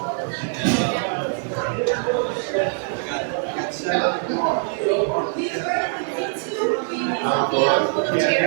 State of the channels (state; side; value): silent; left; digital silence